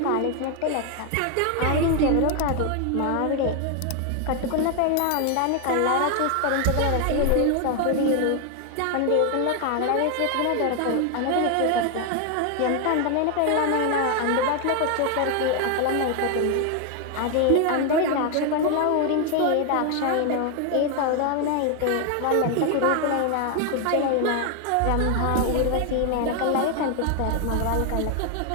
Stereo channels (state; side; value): different; both; correlation 0.01